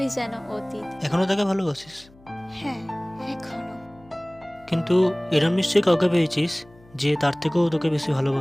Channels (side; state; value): left; noise; hum, 26 dB below the sound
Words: যেন অতীত। এখনো তাকে ভালোবাসিস? হ্যাঁ, এখনো। কিন্তু এরম নিশ্চয়ই কাউকে পেয়েছিস যে তার থেকেও তোকে বেশি